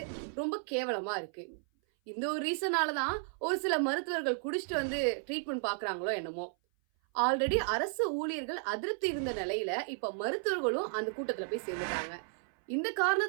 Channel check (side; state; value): left; silent; 55 dB below the other